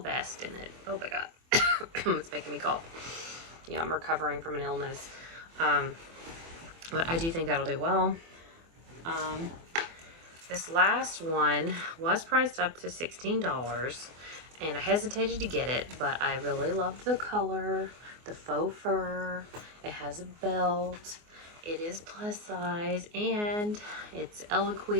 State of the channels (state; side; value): late; left; 24 ms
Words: in it. Oh my god. It's making me cough. Yeah, I'm recovering from an illness. But I do think that'll do well. This last one was priced up to $16, and I hesitated to get it, but I really loved the color, the faux fur. It has a belt. It is plus size, and it's